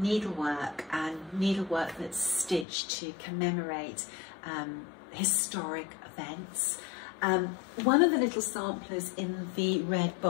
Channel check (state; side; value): drops out; right; at 2.7 s